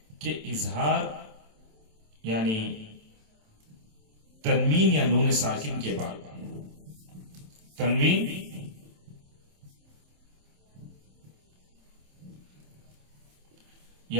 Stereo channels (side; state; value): left; late; 27 ms